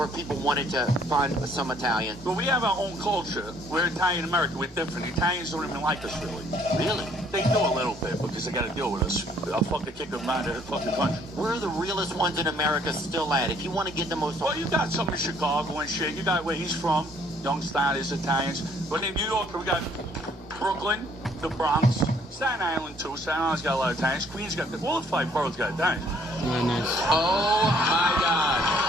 if people wanted to find some Italians? Well, we have our own culture. We're Italian American. We're different. Italians don't even like us, really. Really? They do a little bit because they got to deal with us. I'll fucking kick them out of the fucking country. Where are the realest ones in America still at? If you want to get the most... Well, you got some in Chicago and shit. You got where he's from. Young Stylish Italians. But in New York, we got Brooklyn, the Bronx, Staten Island, too. Staten Island's got a lot of Italians. Queens got... All the 5 boroughs got Italians. Nice. Oh, my God.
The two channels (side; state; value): both; normal; correlation 0.63